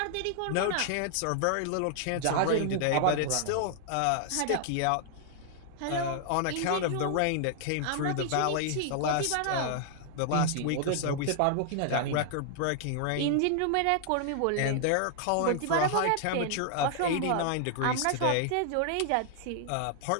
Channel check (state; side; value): different; both; correlation 0.00